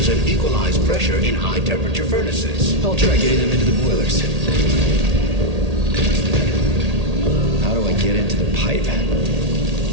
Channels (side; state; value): left; late; 1.8 ms